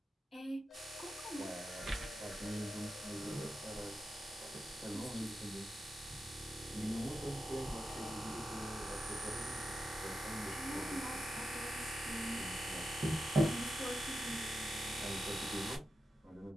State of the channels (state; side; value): normal; both; correlation 0.89